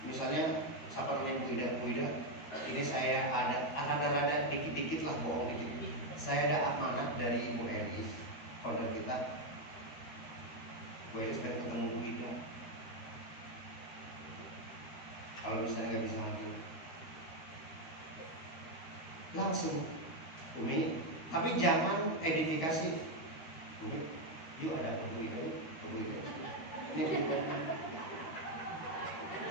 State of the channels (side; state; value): right; late; 13 ms